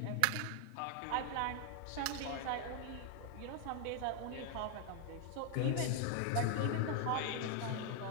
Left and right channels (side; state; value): both; different; correlation 0.00